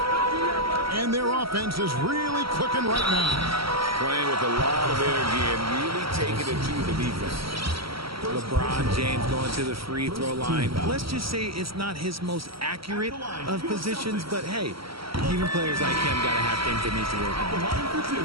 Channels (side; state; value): left; late; 0.75 ms